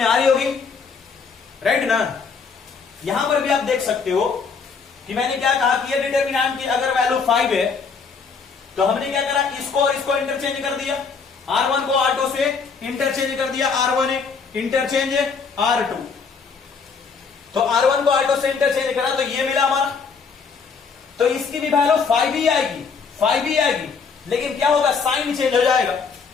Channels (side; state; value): right; quieter; 5.4 dB